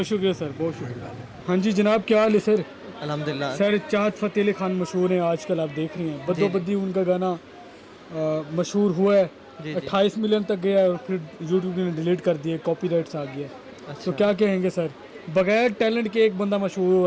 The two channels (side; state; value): both; identical; correlation 1.00